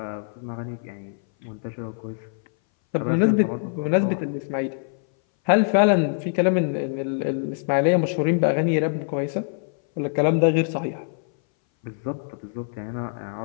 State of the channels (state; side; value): silent; right; 60 dB below the other